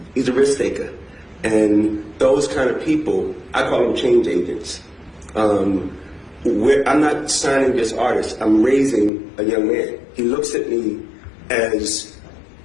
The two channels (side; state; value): right; drops out; at 9.1 s